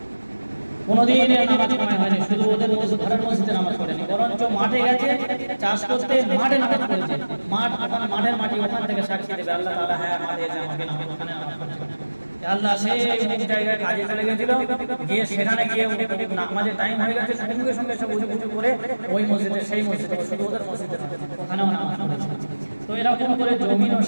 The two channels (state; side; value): inverted; both; correlation -1.00